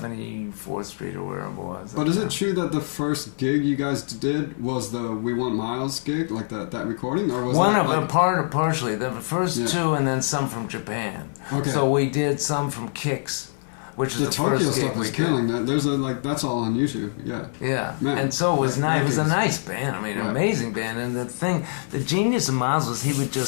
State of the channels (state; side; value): silent; right; 61 dB below the other